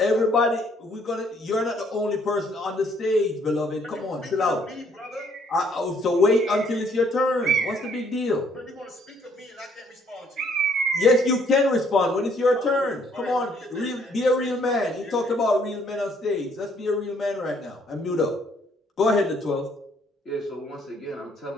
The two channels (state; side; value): normal; both; correlation 0.65